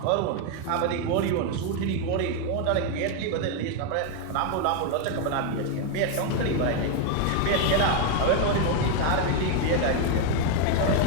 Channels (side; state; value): both; different; correlation 0.01